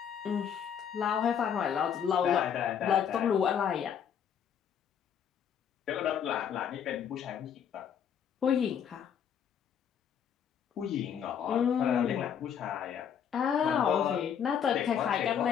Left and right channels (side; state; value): right; quieter; 8.2 dB